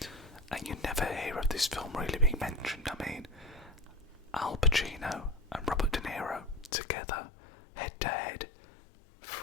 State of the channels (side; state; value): right; drops out; at 6.7 s